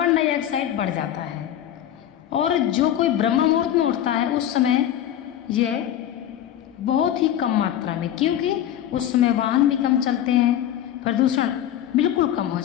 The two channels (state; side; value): quieter; right; 11.1 dB